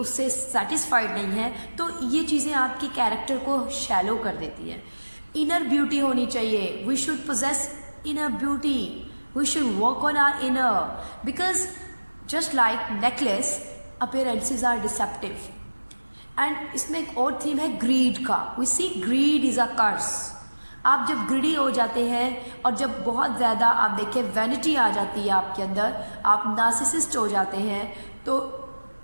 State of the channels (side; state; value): both; inverted; correlation -1.00